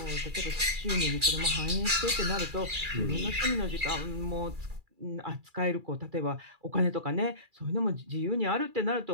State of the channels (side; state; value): left; late; 2.4 ms